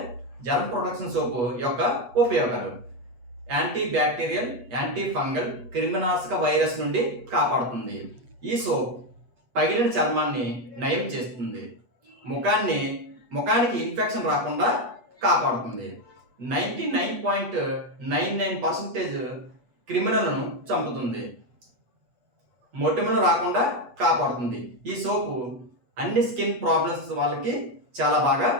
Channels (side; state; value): left; late; 8.2 ms